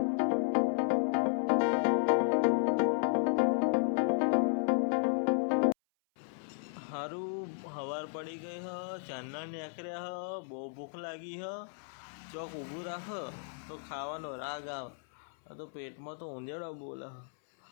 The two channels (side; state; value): right; silent; 55 dB below the other